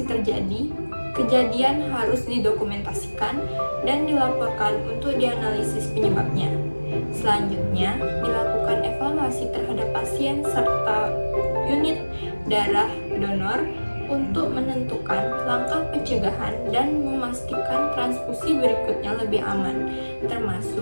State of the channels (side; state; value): both; inverted; correlation -1.00